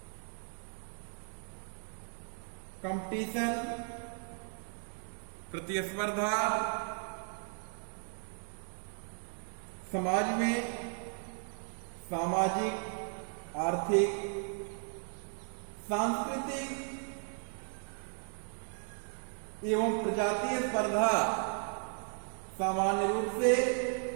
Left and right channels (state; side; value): silent; left; 54 dB below the other